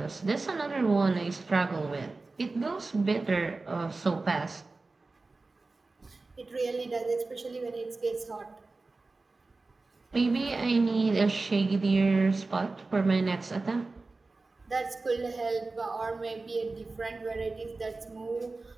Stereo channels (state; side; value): quieter; left; 3.6 dB